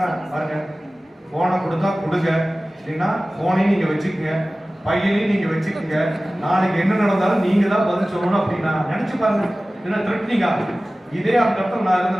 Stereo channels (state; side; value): normal; both; correlation 0.97